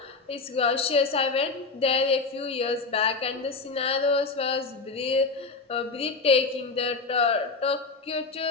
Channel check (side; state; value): right; quieter; 4.2 dB